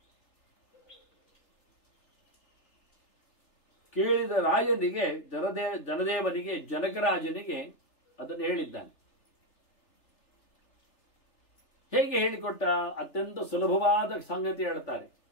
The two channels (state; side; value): late; right; 3.3 ms